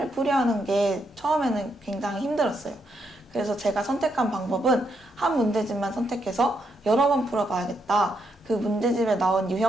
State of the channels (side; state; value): both; normal; correlation 0.79